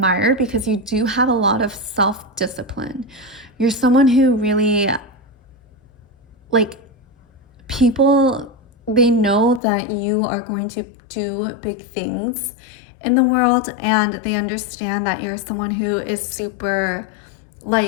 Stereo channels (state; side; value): drops out; right; at 9.6 s